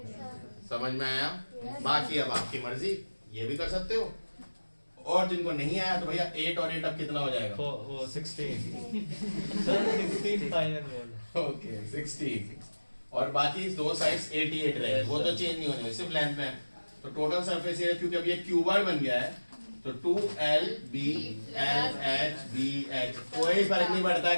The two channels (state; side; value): inverted; both; correlation -1.00